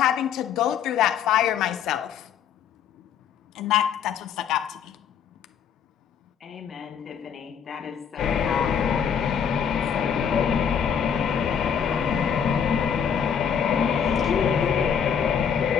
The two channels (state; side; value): quieter; right; 7.8 dB